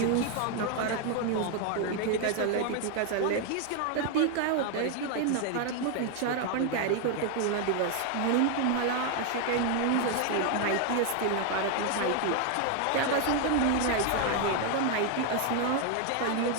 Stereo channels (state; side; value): different; both; correlation 0.00